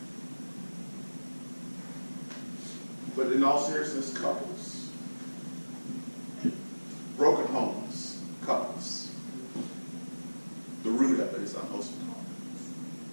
But in all seriousness, couples, broken homes, couples, the root of it is unwholesome talk.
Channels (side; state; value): both; inverted; correlation -1.00